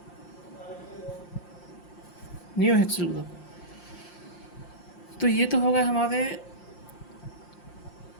new hexyl group. तो ये तो होगा हमारे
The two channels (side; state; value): right; late; 5.7 ms